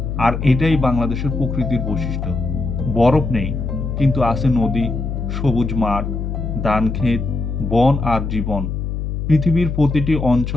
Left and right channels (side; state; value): left; noise; hum, 3 dB below the sound